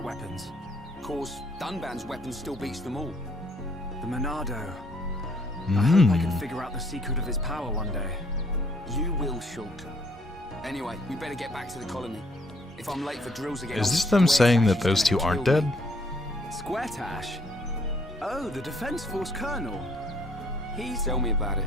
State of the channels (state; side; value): normal; both; correlation 0.66